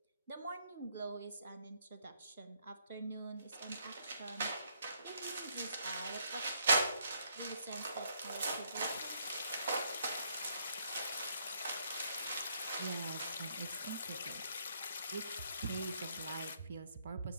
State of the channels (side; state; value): both; inverted; correlation -0.70